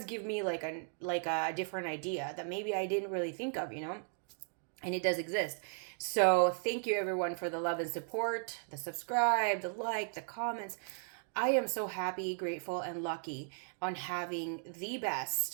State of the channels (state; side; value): silent; left; 54 dB below the other